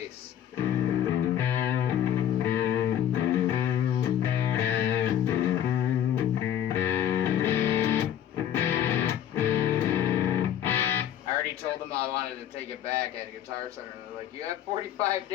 I already told them I wanted to take it back at a Guitar Center, and they're like, "You have 45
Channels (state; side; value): quieter; right; 10.4 dB